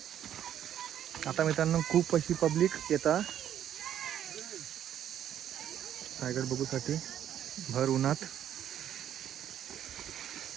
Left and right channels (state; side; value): quieter; left; 10.4 dB